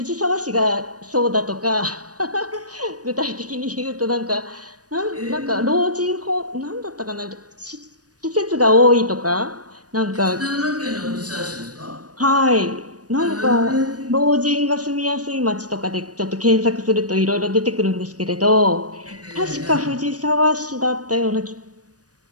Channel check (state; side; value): late; left; 0.68 ms